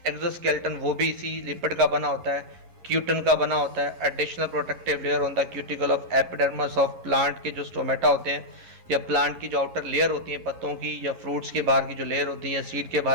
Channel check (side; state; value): left; late; 11 ms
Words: एक्सोस्केलेटन, वो भी इसी लिपिड का बना होता है, क्यूटन का बना होता है। Additional protective layer on the cuticle of epidermis of plant के जो स्टोमेटा होते हैं, या प्लांट की जो आउटर लेयर होती है पत्तों की, या फ्रूट्स के बाहर की जो लेयर होती है, या सीड के